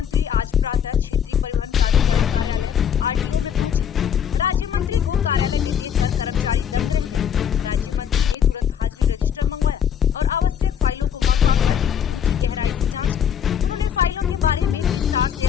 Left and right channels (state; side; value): quieter; right; 8.3 dB